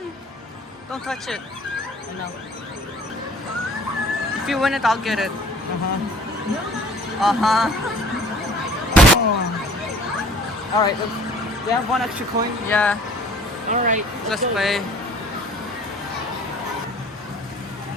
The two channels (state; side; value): normal; both; correlation 0.50